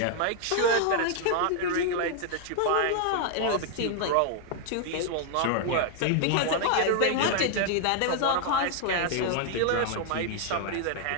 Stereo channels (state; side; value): different; both; correlation 0.00